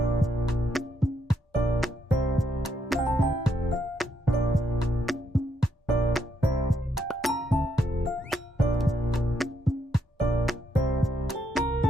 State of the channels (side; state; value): both; normal; correlation 0.77